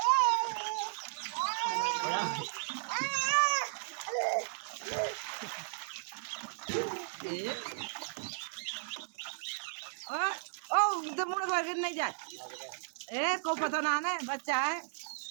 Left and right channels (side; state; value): left; silent; 54 dB below the other